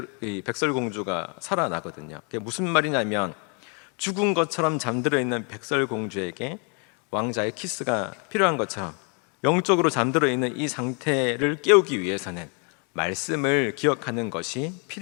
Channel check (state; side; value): quieter; right; 37.1 dB